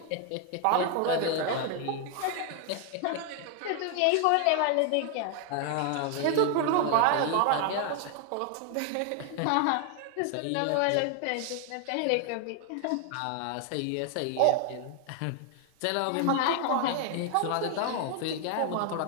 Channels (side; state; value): both; different; correlation 0.00